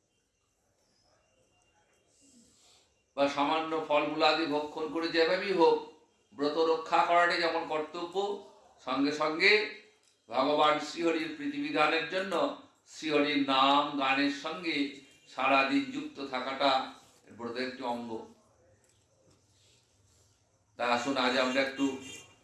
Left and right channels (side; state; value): both; identical; correlation 1.00